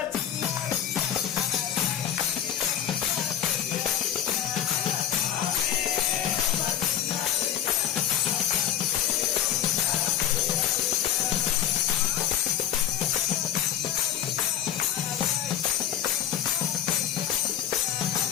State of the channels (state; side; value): quieter; right; 10.5 dB